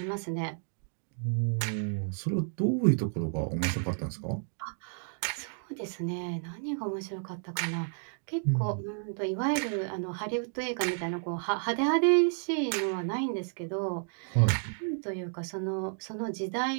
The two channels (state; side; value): silent; left; 57 dB below the other